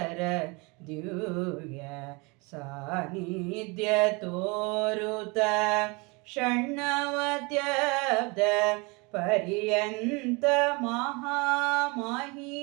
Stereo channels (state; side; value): quieter; left; 28.2 dB